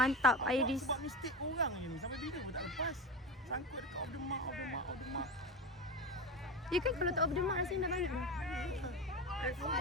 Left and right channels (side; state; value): both; normal; correlation 0.23